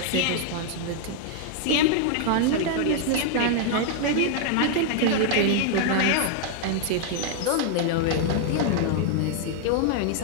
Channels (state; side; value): different; both; correlation 0.00